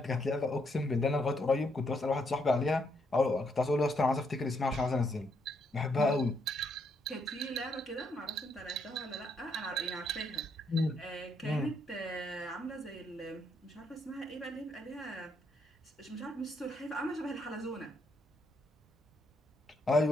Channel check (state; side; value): normal; both; correlation 0.75